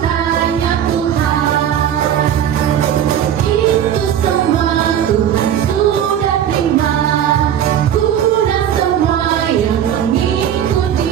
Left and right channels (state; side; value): quieter; left; 9.8 dB